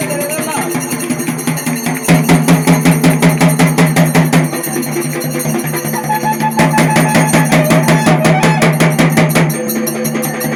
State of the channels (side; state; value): both; identical; correlation 1.00